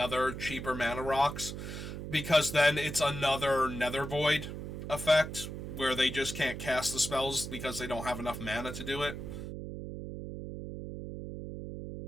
cheaper mana rocks. Because then it's another Nether Void effect where they just can't cast the spells because they don't have enough mana to do it.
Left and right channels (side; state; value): right; noise; hum, 7 dB below the sound